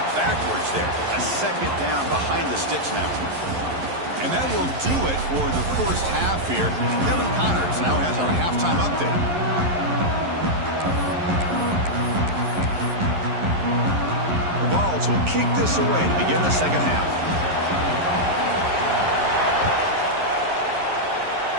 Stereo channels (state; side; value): late; left; 11 ms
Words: backwards there. A 2nd down behind the sticks now. And that will do it for the first half here. Kevin Connors now has our halftime update. The Vols will kick this away to begin the second half.